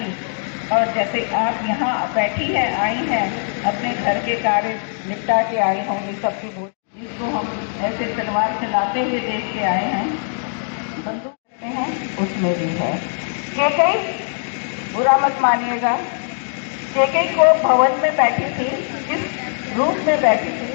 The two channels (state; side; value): silent; right; digital silence